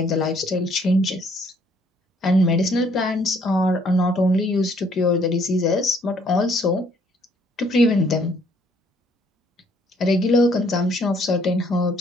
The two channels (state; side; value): normal; both; correlation 0.64